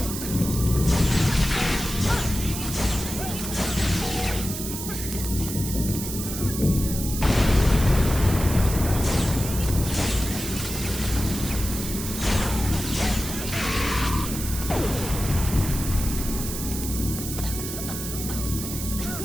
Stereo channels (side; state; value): right; noise; hiss, 7 dB below the sound